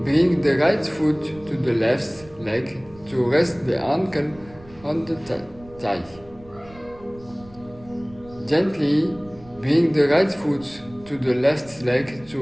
bring the right foot to the left leg to rest the ankle on the thigh. Gently bring the right foot to the left leg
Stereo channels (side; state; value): right; noise; rumble, 22 dB below the sound